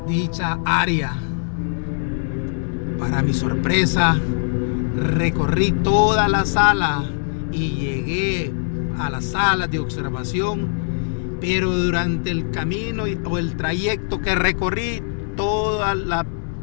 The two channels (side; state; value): right; silent; digital silence